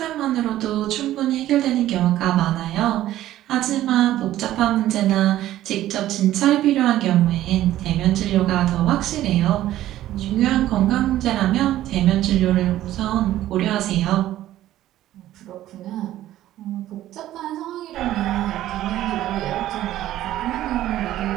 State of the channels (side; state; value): left; quieter; 13.7 dB